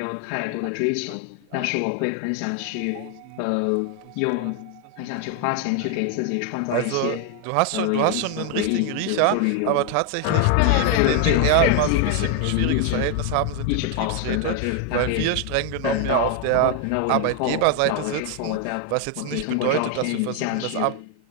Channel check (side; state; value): both; different; correlation 0.00